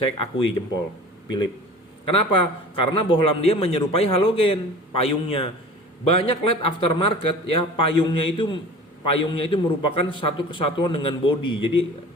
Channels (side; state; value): both; normal; correlation 0.40